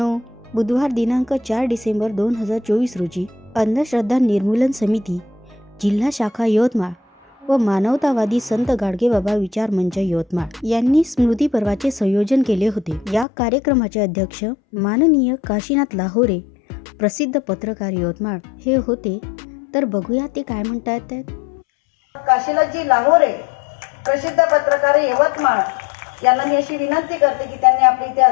बुधवार दिनांक 4 डिसेंबर 2024 रोजी अंधश्रद्धा निर्मूलन समिती, जिल्हा शाखा यवतमाळ व मानवतावादी संत गाडगेबाबा विचार मंच यवतमाळ यांनी स्मृती पर्वाचे संयोजन केले होते। या कार्यक्रमाचे अध्यक्ष माननीय काशीनाथ लाहोरे, प्रसिद्ध पत्रकार यवतमाळ हे होते। तर बघूया ते काय म्हणतात। काशीनाथजी लाहोरे, प्रसिद्ध पत्रकार यवतमाळ यांना मी अशी विनंती करते की त्यांनी आपले इथे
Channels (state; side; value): drops out; right; at 13.2 s